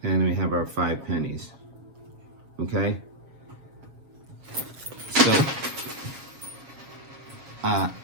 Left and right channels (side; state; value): left; late; 7.3 ms